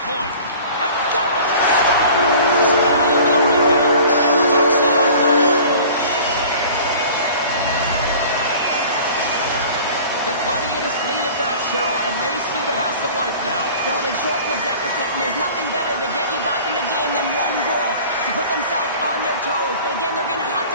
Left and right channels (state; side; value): inverted; both; correlation -0.44